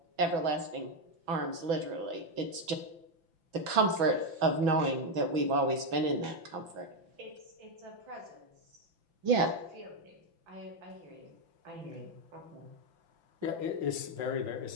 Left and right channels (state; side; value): late; left; 6.2 ms